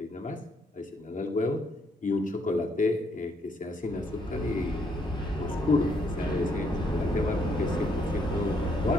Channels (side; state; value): both; normal; correlation 0.72